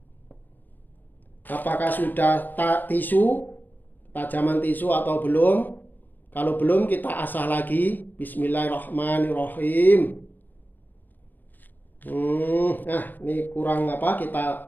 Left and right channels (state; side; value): late; right; 0.087 ms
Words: apakah sudah tisu, tajaman tisu atau belum. Kalau belum kita asah lagi. Bismillahirrahmanirrahim. Nah, ini kurang